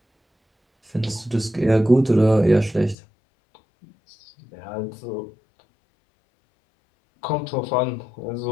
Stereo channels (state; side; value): drops out; right; at 3.0 s